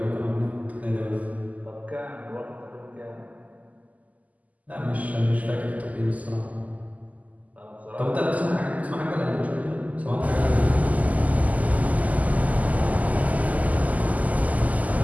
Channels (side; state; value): left; late; 0.076 ms